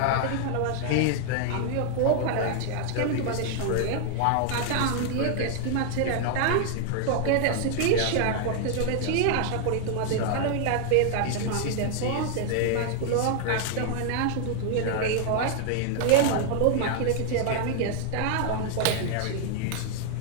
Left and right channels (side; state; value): both; different; correlation 0.00